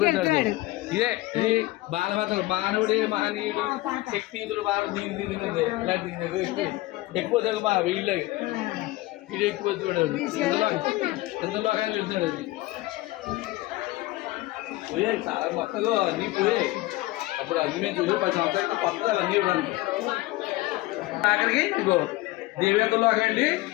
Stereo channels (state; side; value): quieter; right; 19.1 dB